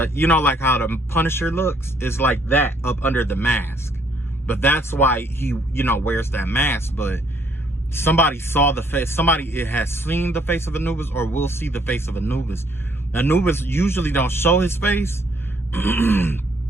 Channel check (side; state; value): both; normal; correlation 0.67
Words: how the Punisher looks is like that up under the mask. But that's why he wears that mask. But somebody saw the face. Somebody has seen the face of Anubis or will see the face of Anubis. Anubis usually don't show his face,